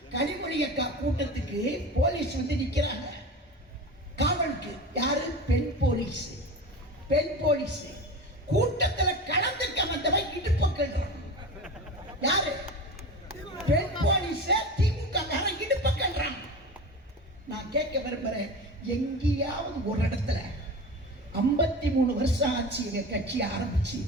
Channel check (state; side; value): normal; both; correlation 0.30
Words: கனிமொழி அக்கா கூட்டத்துக்கு போலீஸ் வந்து நிக்கிறாங்க காவலுக்கு. யாரு? பெண் போலீஸ். பெண் போலீஸ் கூட்டத்துல கலந்துக்க வந்தவன் இடுப்பு கல்றான். யாரு? பெண் போலீஸ். திமுக இடுப்பு கல்றான். நான் கேட்க விரும்புறேன், எங்கேயாவது ஒரு இடத்துல 53 வருஷம் ஆச்சு எங்க கட்சி ஆரம்பிச்சு,